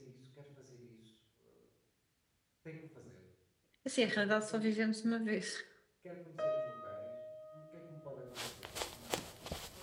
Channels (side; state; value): both; identical; correlation 1.00